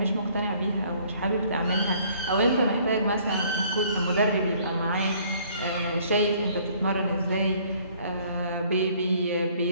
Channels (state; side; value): inverted; both; correlation -0.59